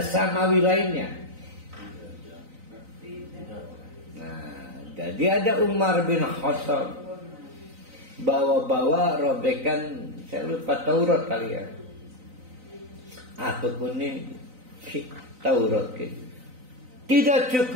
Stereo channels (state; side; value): late; left; 3.9 ms